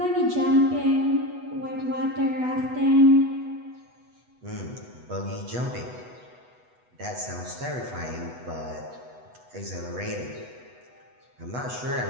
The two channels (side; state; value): left; late; 8.1 ms